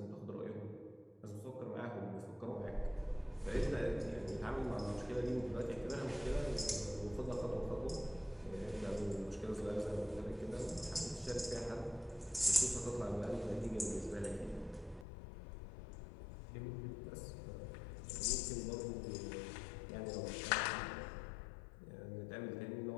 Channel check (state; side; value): drops out; right; at 15.1 s